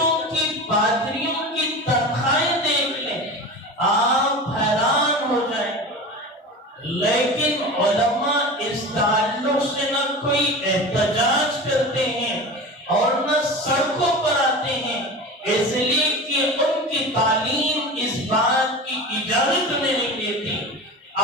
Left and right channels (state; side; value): normal; both; correlation 0.31